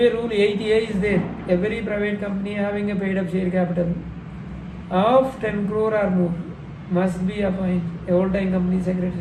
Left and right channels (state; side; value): identical; both; correlation 1.00